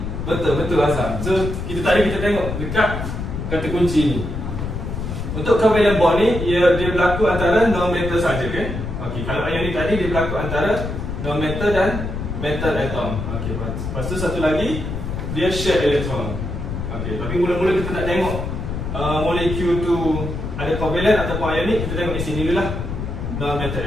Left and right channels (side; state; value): left; noise; rumble, 5 dB below the sound